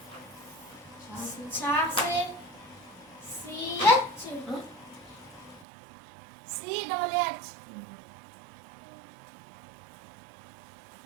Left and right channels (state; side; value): drops out; left; at 5.7 s